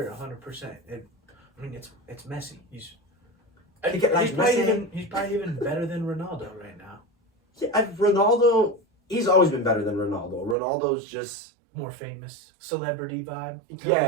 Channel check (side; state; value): left; drops out; at 10.6 s